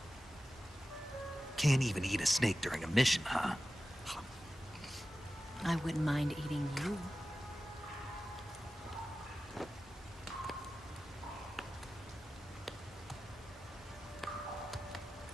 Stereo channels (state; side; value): normal; both; correlation 0.94